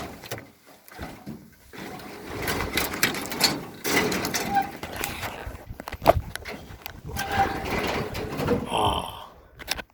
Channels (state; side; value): identical; both; correlation 1.00